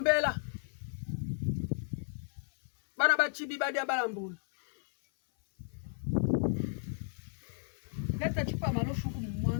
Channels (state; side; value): silent; right; 55 dB below the other